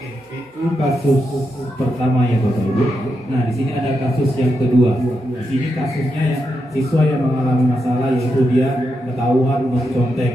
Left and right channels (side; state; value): both; normal; correlation 0.85